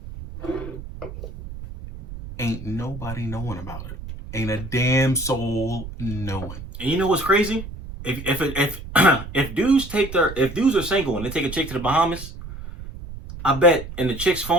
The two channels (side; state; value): right; noise; rumble, 11 dB below the sound